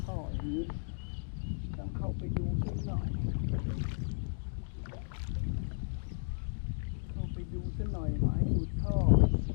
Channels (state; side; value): silent; right; digital silence